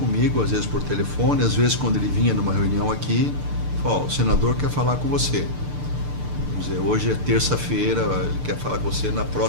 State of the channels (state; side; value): late; left; 6.8 ms